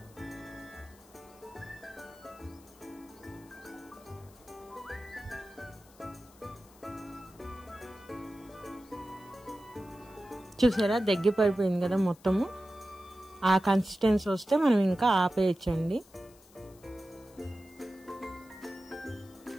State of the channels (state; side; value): noise; left; hiss, 26 dB below the sound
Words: చూసారా, దగ్గర పడిపోయింది కదా మొత్తము. ఆ కన్సిస్టెన్సీ వస్తే మనం ఇంకా ఆపేయచ్చండి.